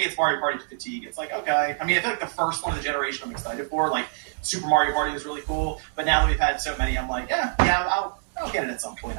it's Mario Party fatigue. It's like, okay. I mean, I feel like the first one of the generation I'm excited for, like Super Mario Party was really cool, but now that we've had so many, I'm like, I'll get it at some point,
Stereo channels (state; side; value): silent; left; digital silence